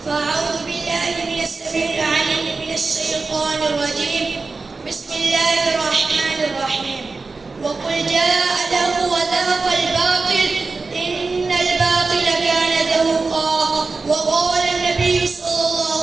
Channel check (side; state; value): left; quieter; 4.0 dB